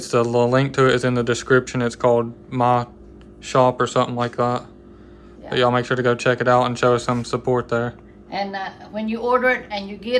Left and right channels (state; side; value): identical; both; correlation 1.00